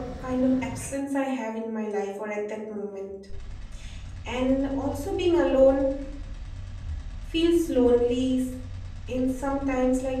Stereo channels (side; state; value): both; identical; correlation 1.00